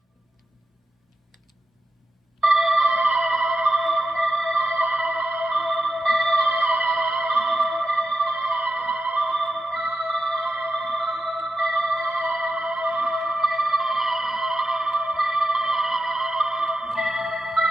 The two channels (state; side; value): normal; both; correlation 0.89